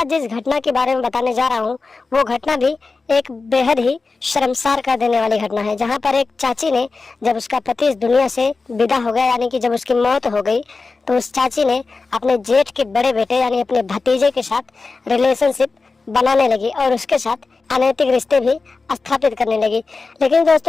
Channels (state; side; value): quieter; right; 4.0 dB